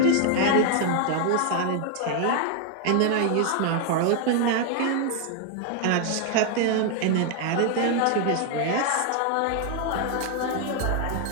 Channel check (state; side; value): different; both; correlation 0.00